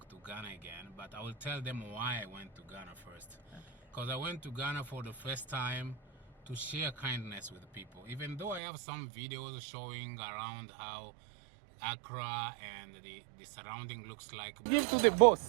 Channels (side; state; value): left; drops out; at 8.6 s